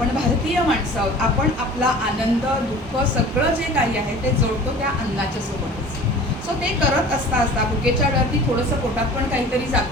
भारतीय माणसं आहोत, आपण आपला आनंद दुःख सगळं जे काही आहे ते जोडतो त्या अन्नाच्या सोबतच. सो ते करत असता असता भुकेच्या वेळावरती थोडंसं पोटात पण काहीतरी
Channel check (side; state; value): both; normal; correlation 0.43